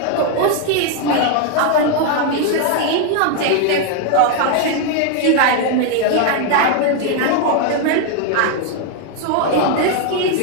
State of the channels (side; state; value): both; different; correlation 0.01